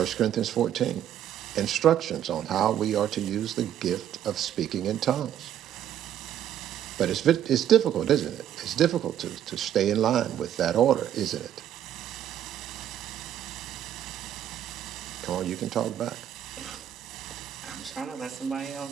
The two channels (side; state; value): left; quieter; 10.6 dB